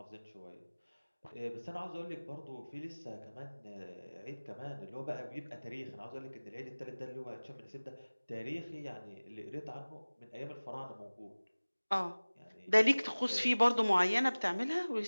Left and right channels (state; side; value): inverted; both; correlation -1.00